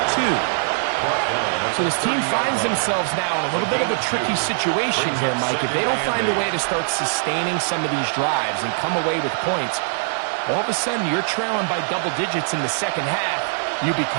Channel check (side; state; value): left; silent; digital silence